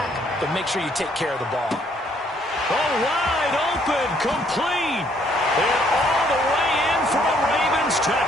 but make sure you take care of the ball. Oh, wide open, complete, and all the way in for a Ravens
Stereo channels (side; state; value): both; normal; correlation 0.66